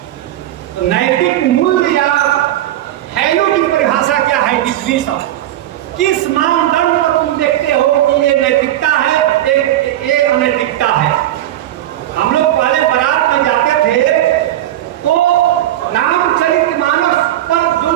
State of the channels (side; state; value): left; quieter; 13.4 dB